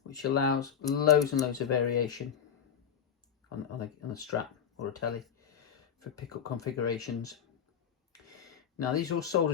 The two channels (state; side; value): quieter; right; 8.0 dB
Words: which allows loads and loads of variation on a Strat or a telly for pickup configurations. Now these are all